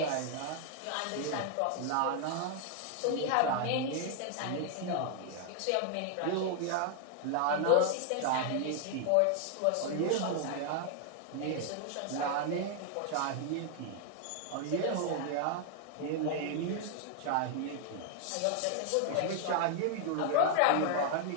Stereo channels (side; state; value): both; different; correlation 0.00